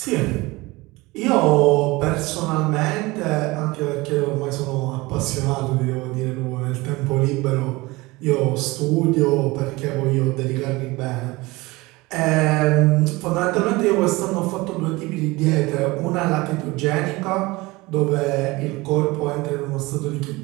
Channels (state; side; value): quieter; left; 22.0 dB